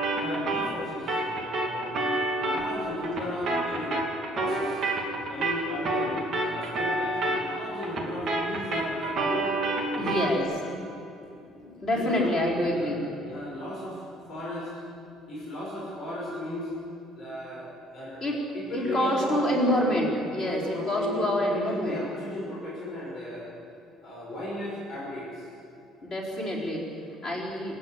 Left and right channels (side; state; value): both; normal; correlation 0.59